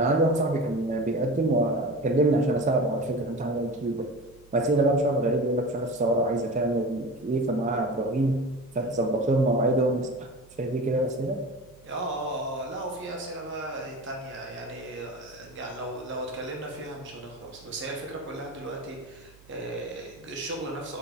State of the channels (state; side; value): noise; right; hum, 25 dB below the sound